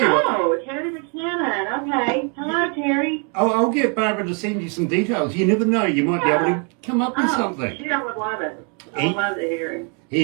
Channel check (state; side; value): quieter; left; 37.6 dB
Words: you what. Oh, Terry McKinnon. Okay. Hello, Terry. I'll get Barbara to send you some details. You never know. You might be able to come up with something. Shoot, I would love it. I would love to hear him.